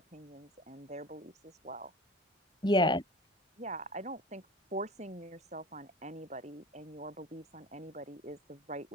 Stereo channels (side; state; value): both; normal; correlation 0.37